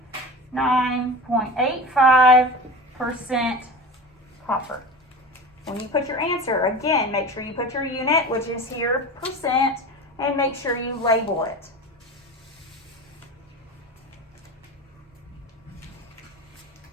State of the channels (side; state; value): both; normal; correlation 0.32